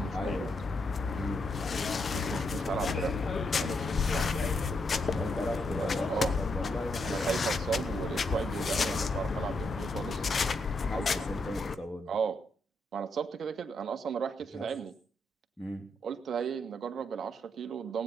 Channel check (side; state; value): both; normal; correlation 0.79